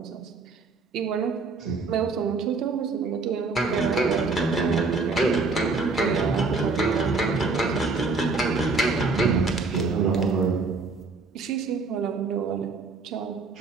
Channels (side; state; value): left; quieter; 4.0 dB